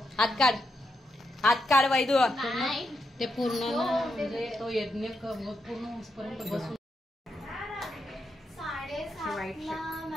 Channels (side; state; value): both; normal; correlation 0.83